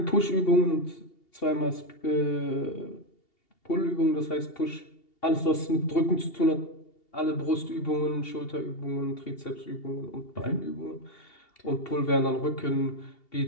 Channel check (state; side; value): late; right; 2.7 ms